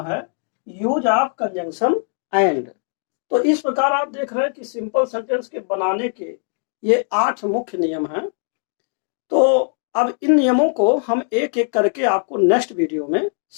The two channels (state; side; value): silent; right; 63 dB below the other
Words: है यूज ऑफ कंजंक्शन एंड। तो इस प्रकार आप देख रहे हैं कि सिंपल सेंटेंस के बनाने के ये 8 मुख्य नियम हैं। तो अब इन नियमों को हम एक एक करके आपको नेक्स्ट वीडियो में